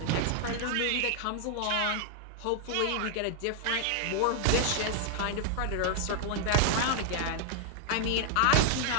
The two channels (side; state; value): both; different; correlation 0.00